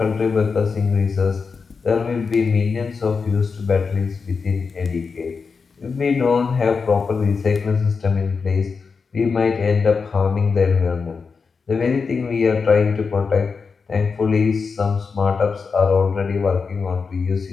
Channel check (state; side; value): quieter; right; 5.1 dB